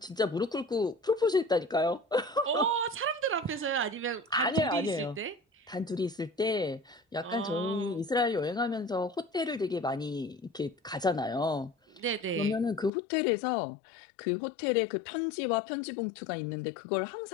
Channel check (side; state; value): right; drops out; at 12.9 s